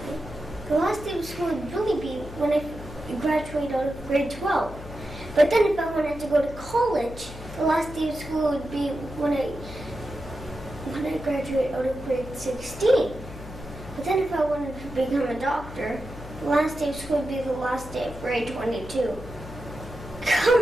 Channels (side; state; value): left; noise; hum, 13 dB below the sound